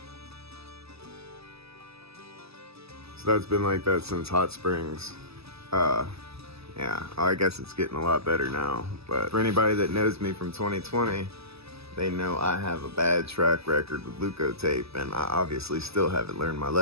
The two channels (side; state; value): left; late; 0.78 ms